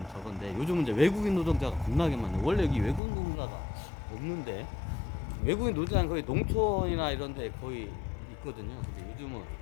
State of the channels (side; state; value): right; drops out; at 3.0 s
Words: 저건데, 요즘은 이제 외국인 노동자가 겁나게 많네. 원래 여기 외국인 노동자가 없는데, 외국인 노동자는 거의 농촌이나 이런 데 거의 있거든요. 근데 요즘은